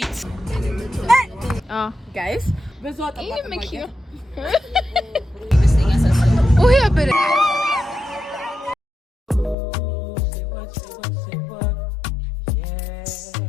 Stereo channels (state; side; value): drops out; right; at 9.6 s